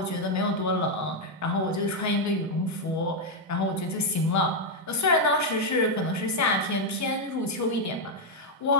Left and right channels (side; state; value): both; normal; correlation 0.01